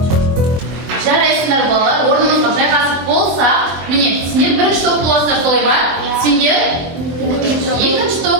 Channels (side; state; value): left; late; 24 ms